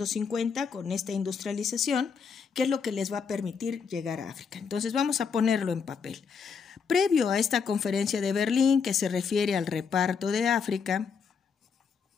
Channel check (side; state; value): right; quieter; 6.0 dB